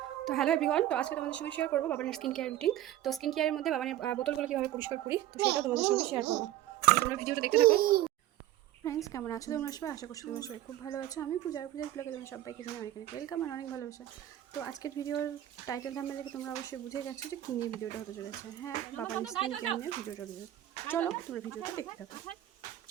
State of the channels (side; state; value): left; quieter; 13.2 dB